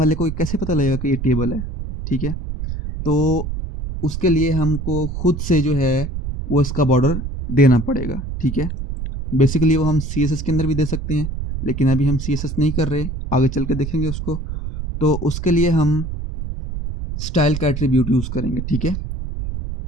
को कैसे पता लगेगा कि ये टेबल है, ठीक है। तो उसके लिए हमको खुद से जो है वो इसका बॉर्डर देना पड़ेगा, ठीक है। बेसिकली वो हम CSS के अंदर भी दे सकते हैं, लेकिन अभी हम CSS नहीं कर रहे, आगे चल के देखेंगे उसको। तो उसके लिए हम स्टाइल का एट्रीब्यूट यूज़ करेंगे, ठीक है।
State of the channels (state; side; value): noise; right; rumble, 5 dB below the sound